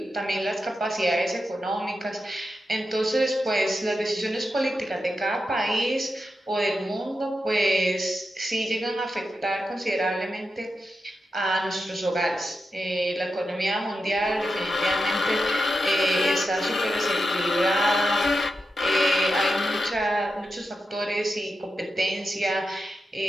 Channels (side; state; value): both; normal; correlation 0.89